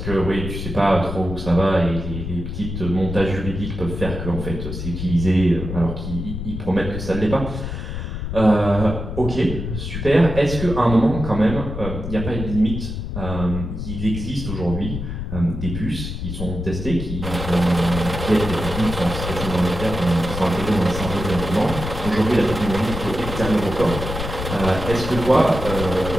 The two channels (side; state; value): left; noise; rumble, 6 dB below the sound